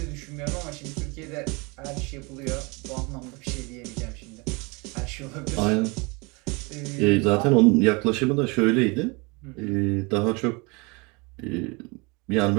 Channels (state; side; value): quieter; left; 28.2 dB